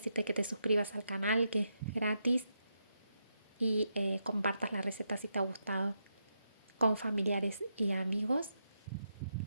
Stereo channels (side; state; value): both; inverted; correlation -0.83